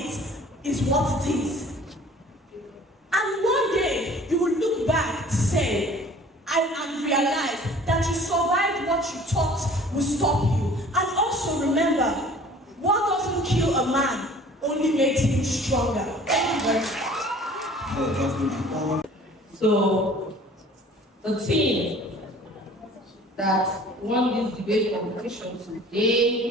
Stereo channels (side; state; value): both; normal; correlation 0.49